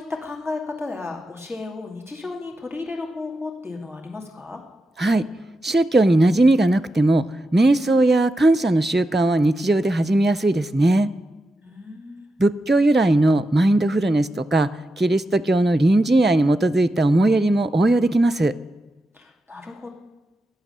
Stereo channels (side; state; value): both; normal; correlation 0.88